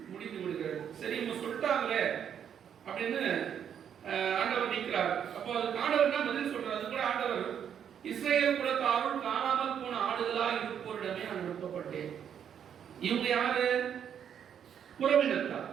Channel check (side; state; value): left; quieter; 8.6 dB